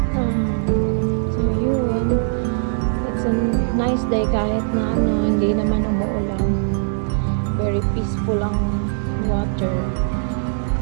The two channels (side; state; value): left; silent; digital silence